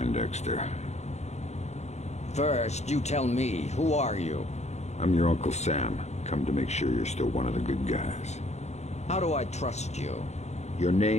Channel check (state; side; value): late; right; 0.32 ms